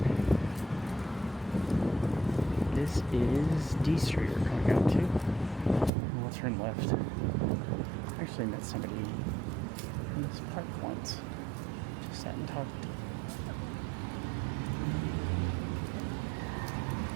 This is D Street we're coming out to. We'll turn left. I actually met somebody in this park once. Just sat and talked.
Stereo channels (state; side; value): drops out; left; at 5.9 s